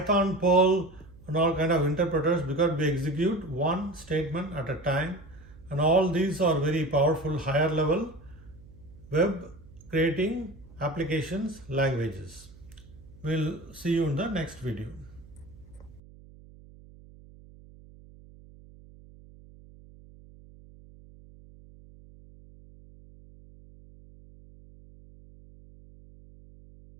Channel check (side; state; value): right; noise; hum, 21 dB below the sound